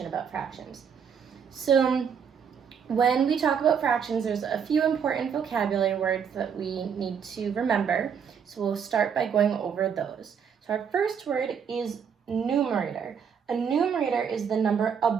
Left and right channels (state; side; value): quieter; left; 7.1 dB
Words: about fractions. So when we talk about fractions, there's a few important vocabulary words that we need to remember. So we'll start by going over those. So our first word is numerator. A numerator is the number